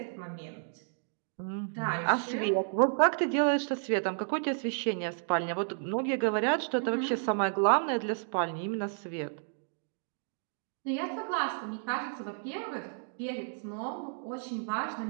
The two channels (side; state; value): left; silent; digital silence